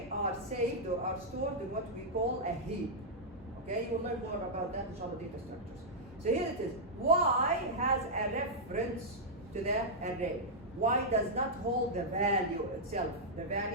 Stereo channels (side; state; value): both; normal; correlation -0.08